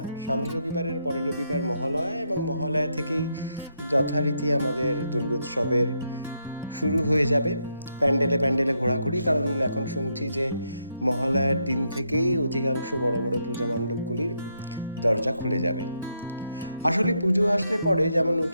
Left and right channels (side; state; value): both; inverted; correlation -0.79